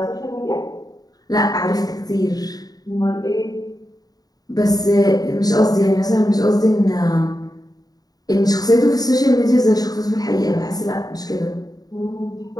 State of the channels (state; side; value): late; right; 0.18 ms